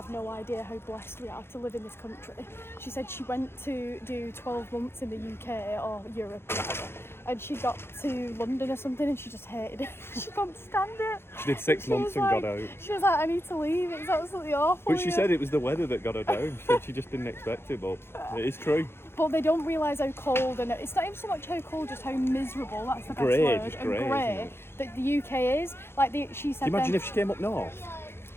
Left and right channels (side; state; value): right; late; 0.11 ms